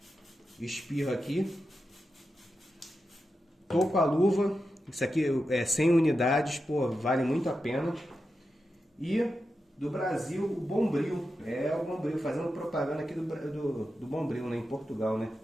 Espirro aqui. Tô com a luva. Isso aqui é 100 unidades, pô, vale muito a pena. E do Brasil, o Bombril. É o Bombril, fazendo propaganda aqui do Bombril, né, em Portugal, né?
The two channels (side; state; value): both; normal; correlation 0.90